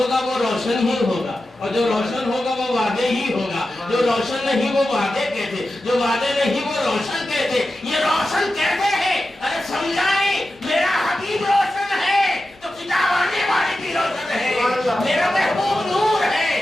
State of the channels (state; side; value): noise; left; hum, 29 dB below the sound